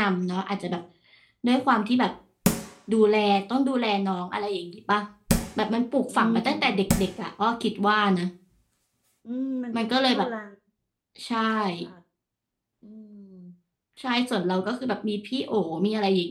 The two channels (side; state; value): both; identical; correlation 1.00